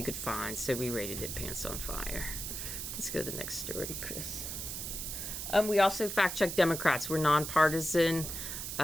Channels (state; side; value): noise; right; hiss, 5 dB below the sound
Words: could find, so we rated it pants on fire. Let's go to the next story, Chris. We also fact-check Democrats. We're nonpartisan.